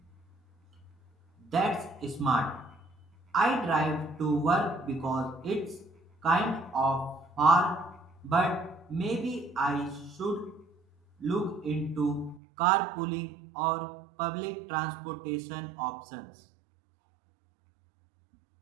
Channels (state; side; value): drops out; left; at 12.4 s